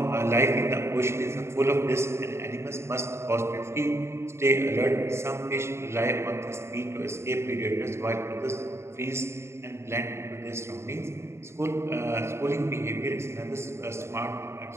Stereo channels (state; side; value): late; left; 0.13 ms